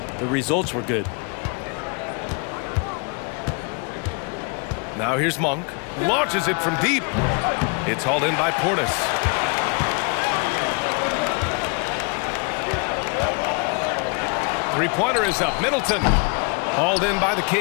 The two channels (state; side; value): quieter; right; 35.0 dB